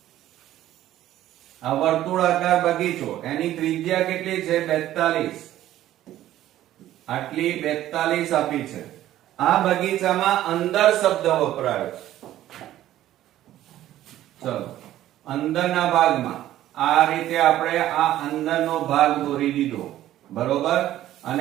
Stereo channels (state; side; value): quieter; left; 13.4 dB